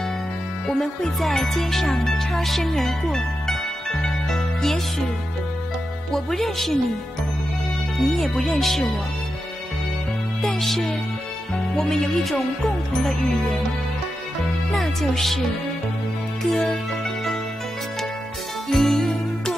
我们会在街上擦身而过，也许我不认识你，你也不认识我，但是我们有一种共同的语言，那就是歌。一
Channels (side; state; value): both; normal; correlation 0.89